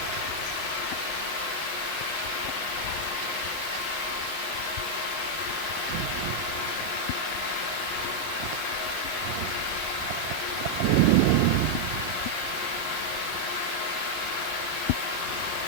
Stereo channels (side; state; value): right; late; 32 ms